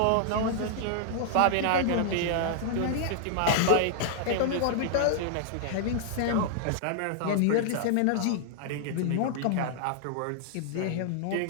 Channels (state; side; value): different; both; correlation -0.01